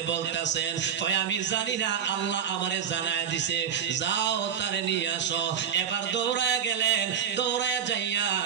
বলতাছেন? কয় আমি জানি না, আল্লাহ আমারে জানায় দিছে, যাও তারে নিয়ে আসো। এবার দৌড়ায়া গেলেন, দৌড়ায়া যাইয়া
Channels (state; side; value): quieter; left; 8.0 dB